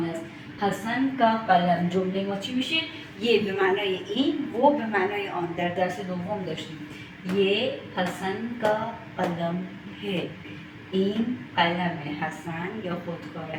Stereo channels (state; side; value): identical; both; correlation 1.00